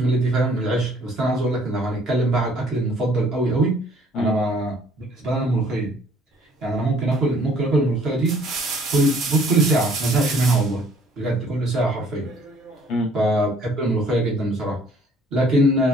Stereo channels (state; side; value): normal; both; correlation 0.59